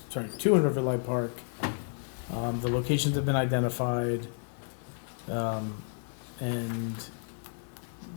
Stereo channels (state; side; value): silent; right; 57 dB below the other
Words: 2 in Riverlight Park. The locations have been identified, in